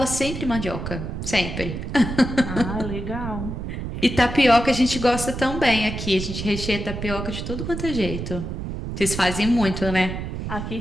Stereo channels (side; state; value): right; noise; rumble, 6 dB below the sound